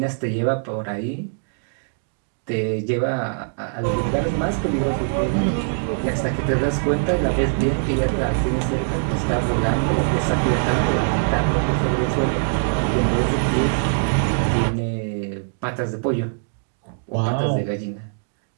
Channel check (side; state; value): left; silent; digital silence